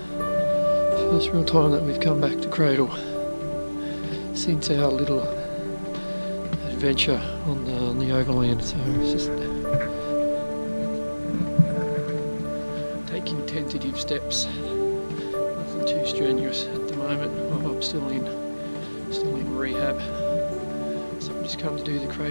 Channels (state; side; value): inverted; both; correlation -1.00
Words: first real time that we've come back to Cradle since our little adventure on the overland, so it's just taking tentative steps, nothing too strenuous at the moment. I'm still in rehab, so I've just come to do the